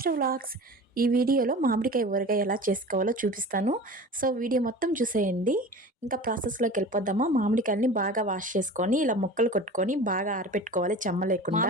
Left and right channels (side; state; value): both; normal; correlation 0.36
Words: వ్లాగ్స్. ఈ వీడియోలో మామిడికాయ ఊరగాయ ఎలా చేసుకోవాలో చూపిస్తాను. సో వీడియో మొత్తం చూసేయండి. ఇంకా ప్రాసెస్లోకి వెళ్ళిపోద్దామా. మామిడికాయలని బాగా వాష్ చేసుకొని ఇలా ముక్కలు కొట్టుకొని బాగా ఆరపెట్టుకోవాలి చెమ్మ లేకుండా.